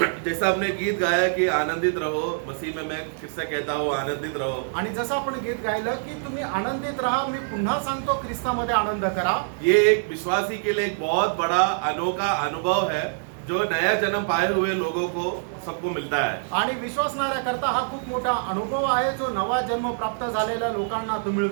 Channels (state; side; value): silent; left; digital silence